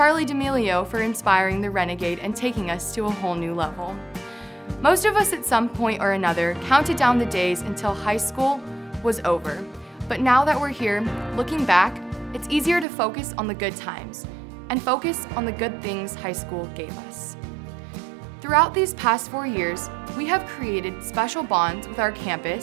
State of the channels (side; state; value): left; drops out; at 12.9 s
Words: D'Amelio for inspiring the Renegade and taking us to a whole new level. Most of us at some point or another counted down the days until high school was over. But now that we're here, looking back, it's easier to focus on the good times and focus on the good things high school gave us. Throughout these past 4 years, we have created special bonds with our